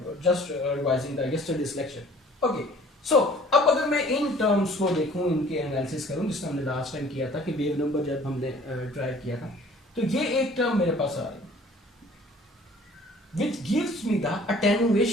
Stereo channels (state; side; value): normal; both; correlation 0.52